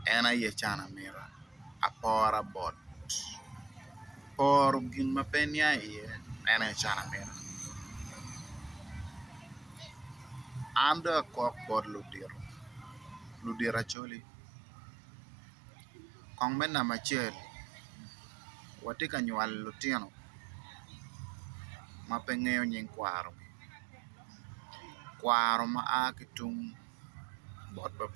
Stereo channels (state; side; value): drops out; left; at 14.0 s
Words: en aye cana mira apora bot poro gin ma pe nia iye en cana mira an do akok bod ludiro acholi kong me namba acel wati ka nywal lutino ma pe ng'eyo nying kwaro ma a ki tung bot